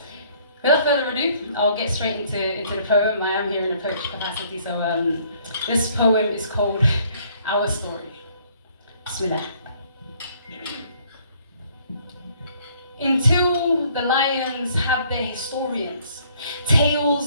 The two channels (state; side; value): inverted; both; correlation -0.62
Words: Without further ado, I'll get straight into the poem. I am here in a poetry capacity, so this poem is called Our Story. Bismillah. Until the lions have their historians,